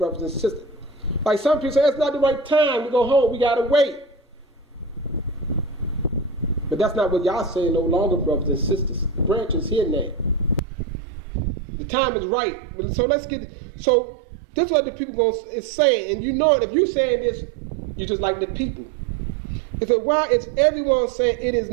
and sisters. Like some people say, it's not the right time. We go home. We got to wait. But that's not what Yah saying no longer, brothers and sisters. The branch is here now. The time is right. So let's get. So this is what the people is saying, and you know it. If you're saying this, you just like the people. It said, why is everyone saying it is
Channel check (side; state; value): left; drops out; at 10.6 s